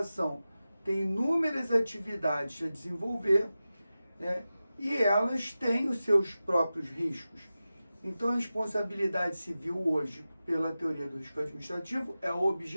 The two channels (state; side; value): inverted; both; correlation -0.94